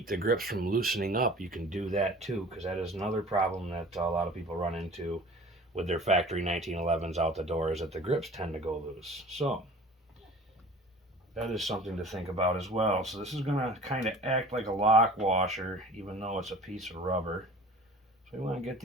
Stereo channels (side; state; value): both; normal; correlation 0.44